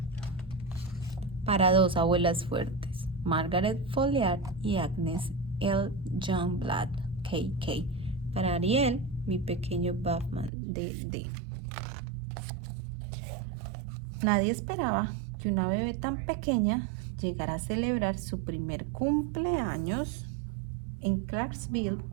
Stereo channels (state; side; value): drops out; left; at 10.5 s